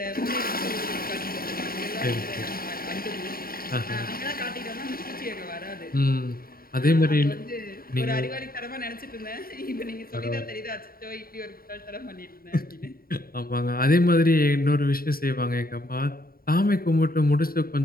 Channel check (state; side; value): late; right; 0.43 ms